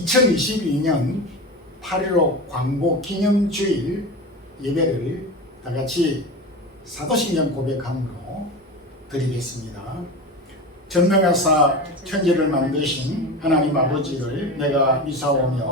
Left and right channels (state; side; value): normal; both; correlation 0.27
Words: 8.15 광복 기념주일 예배를 다같이 사도신경 고백함으로 드리겠습니다. 전능하사 천지를 만드신 하나님 아버지를 내가